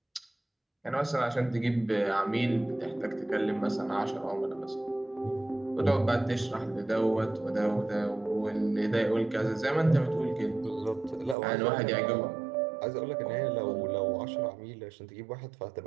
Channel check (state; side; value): drops out; left; at 11.4 s